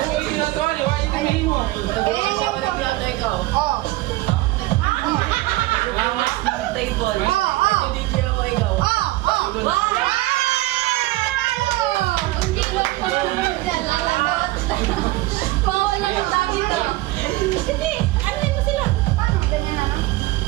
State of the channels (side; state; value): left; quieter; 19.0 dB